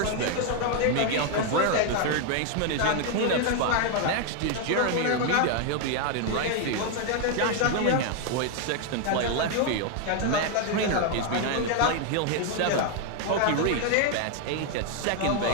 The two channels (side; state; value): both; different; correlation 0.01